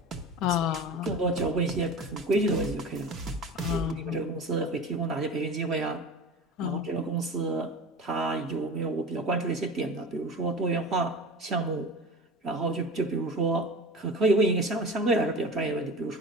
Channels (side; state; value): both; normal; correlation 0.33